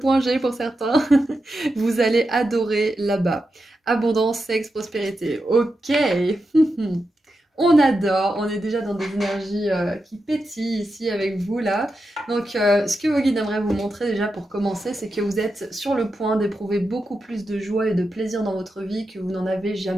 G pour certains. Vous allez adorer là-bas. Abondance, sexe, prospérité. Ok. On adore, on est déjà dans des énergies qui pétillent ici avec vous là. Donc ce que vos guides aimeraient vous montrer déjà pour commencer, c'est que vous êtes sur le point d'éprouver beaucoup plus de joie et de plaisir dans votre vie que vous n'en avez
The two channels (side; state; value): both; normal; correlation 0.88